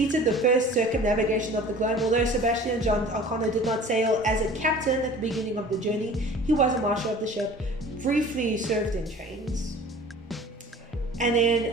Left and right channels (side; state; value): both; normal; correlation 0.44